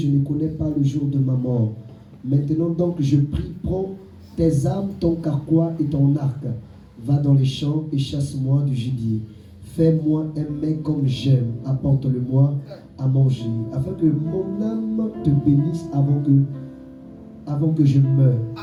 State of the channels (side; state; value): both; identical; correlation 1.00